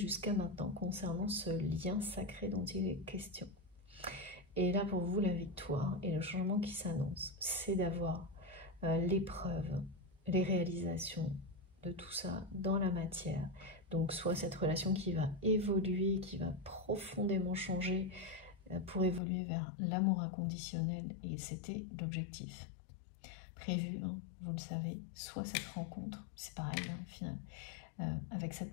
maintenant concernant ce lien sacré dont il est question. Et là, pour vous, la victoire et le changement qui s'annonce, c'est d'avoir l'épreuve, les réalisations de tout ça dans la matière. Donc, soit cette relation qui va évoluer, qui va profondément changer pour évoluer vers l'amour inconditionnel, et c'était l'objectif prévu, hein, vous le savez, soit cette rencontre, c'est pareil, hein, au final, avec cette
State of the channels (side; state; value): right; drops out; at 19.2 s